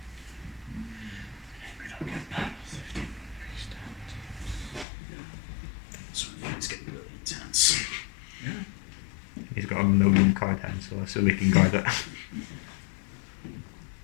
get that. 15 increased damage. So it's getting really intense. He's got a million card hands, so I assume he can guard it.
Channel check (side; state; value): right; drops out; at 4.9 s